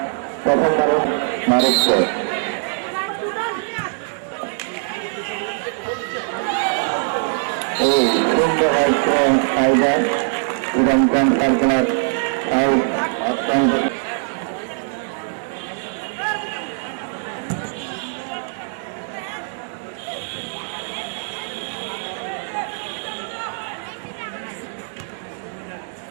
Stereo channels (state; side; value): silent; left; digital silence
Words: প্রথম মানুষ মারুক্ষ। এই সুন্দর হচ্ছে ফাইবার এবং ক্যান্সার খেলার অত্যন্ত